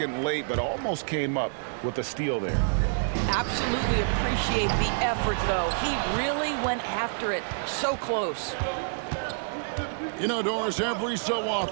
late, but almost came up with a steal there. Absolutely appreciate the effort, though. He really went after it. So close. You know, Doris, every so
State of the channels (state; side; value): silent; left; 60 dB below the other